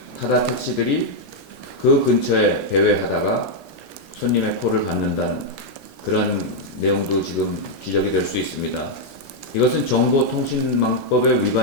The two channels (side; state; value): both; normal; correlation -0.02